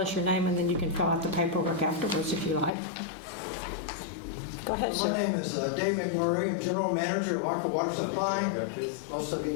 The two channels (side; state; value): right; drops out; at 2.7 s